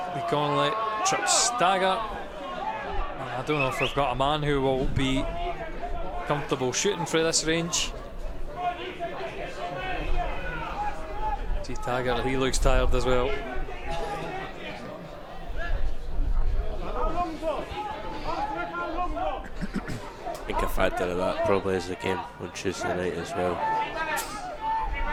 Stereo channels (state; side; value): identical; both; correlation 1.00